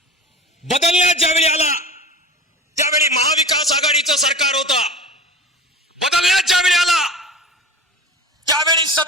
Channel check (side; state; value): both; normal; correlation 0.34